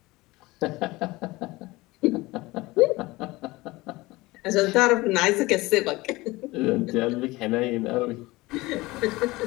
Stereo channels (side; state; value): right; quieter; 20.9 dB